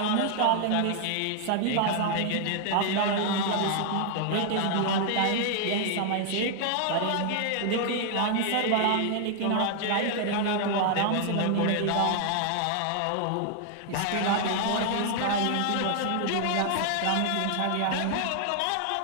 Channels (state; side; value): different; both; correlation 0.00